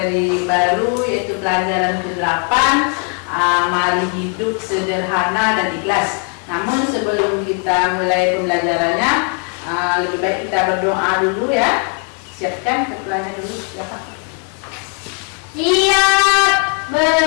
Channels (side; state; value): right; quieter; 36.0 dB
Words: baru yaitu pelajaran ke-8, mari hidup sederhana dan ikhlas. Namun sebelum kita mulai pembelajarannya, lebih baik kita berdoa dulu ya. Siapkan ketuanya dulu ya Pak. Siap,